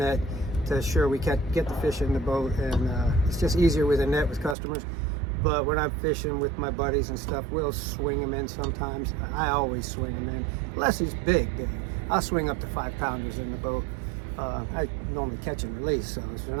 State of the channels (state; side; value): drops out; left; at 4.5 s